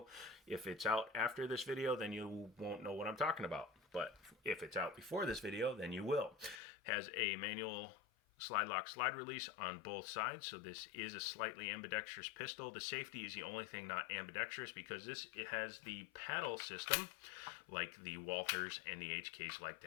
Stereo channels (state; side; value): drops out; right; at 6.6 s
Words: If it's out after this video, then you won't know what I'm talking about. But if it's out before this video, then you will. Has a manual slide lock, slide release on both sides, so this is a slightly ambidextrous pistol. The safety is the only thing not ambidextrous because it has the paddle system like the Walthers and the HKs like